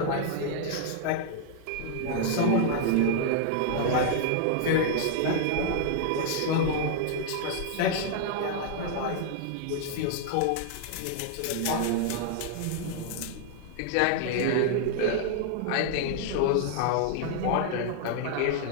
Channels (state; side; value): different; both; correlation -0.01